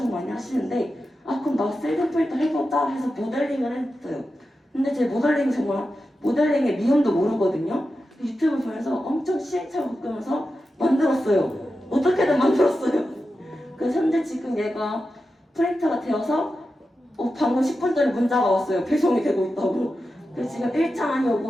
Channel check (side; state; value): both; normal; correlation 0.91